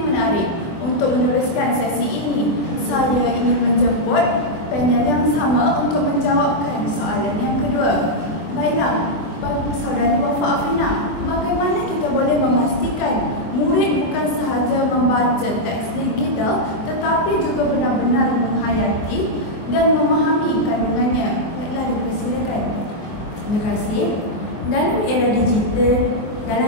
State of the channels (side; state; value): right; late; 23 ms